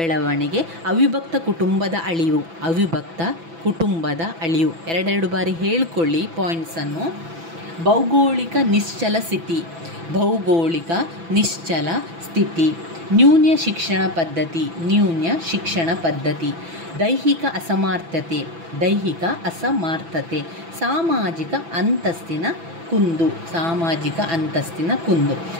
ಅವಿಭಕ್ತ ಕುಟುಂಬದ ಅಳಿವು, ಅವಿಭಕ್ತ ಕುಟುಂಬದ ಅಳಿವು. 2 ಬಾರಿ ಹೇಳ್ಕೊಳ್ಳಿ ಪಾಯಿಂಟ್ಸನ್ನು. ಭೌಗೋಳಿಕ ನಿಶ್ಚಲ ಸ್ಥಿತಿ, ಭೌಗೋಳಿಕ ನಿಶ್ಚಲ ಸ್ಥಿತಿ. ನ್ಯೂನ್ಯ ಶಿಕ್ಷಣ ಪದ್ಧತಿ, ನ್ಯೂನ್ಯ ಶಿಕ್ಷಣ ಪದ್ಧತಿ. ದೈಹಿಕ ಅಸಮರ್ಥತೆ, ದೈಹಿಕ ಅಸಮರ್ಥತೆ. ಸಾಮಾಜಿಕ ಅಂತಸ್ತಿನ ಕುಂದು, ಸಾಮಾಜಿಕ ಅಂತಸ್ತಿನ ಕುಂದು.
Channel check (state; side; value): late; left; 6.0 ms